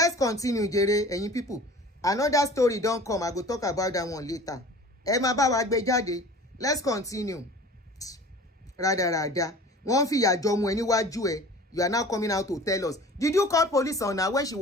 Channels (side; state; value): both; normal; correlation 0.43